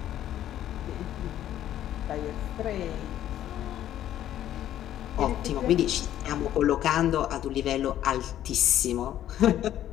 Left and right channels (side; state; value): right; quieter; 11.9 dB